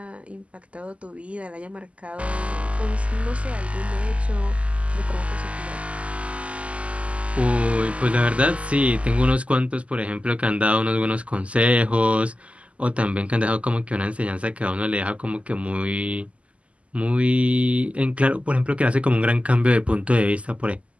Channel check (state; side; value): late; left; 0.062 ms